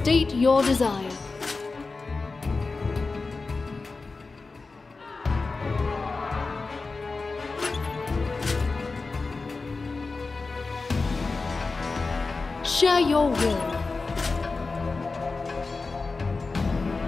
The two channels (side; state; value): right; quieter; 3.9 dB